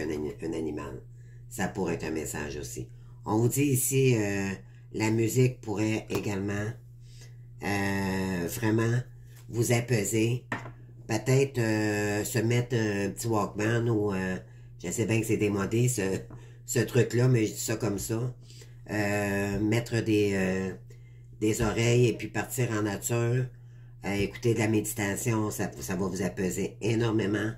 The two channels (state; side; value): identical; both; correlation 1.00